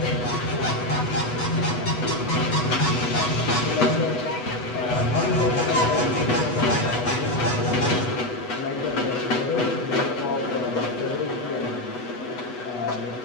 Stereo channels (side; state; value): right; late; 8.1 ms